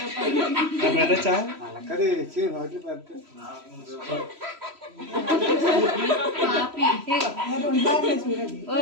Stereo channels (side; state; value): left; late; 3.0 ms